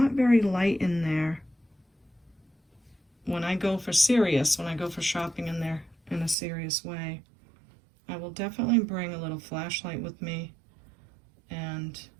very light in there. When I go for shopping in there in a serious way, I will definitely bring a little flashlight with me and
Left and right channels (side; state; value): left; drops out; at 6.4 s